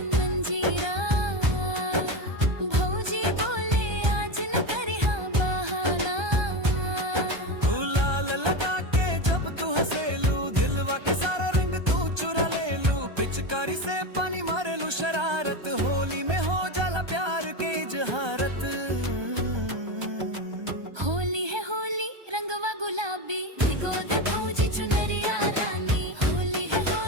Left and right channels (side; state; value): left; late; 1.3 ms